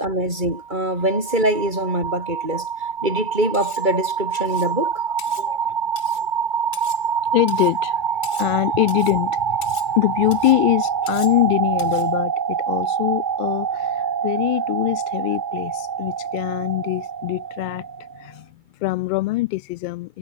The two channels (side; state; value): left; late; 2.3 ms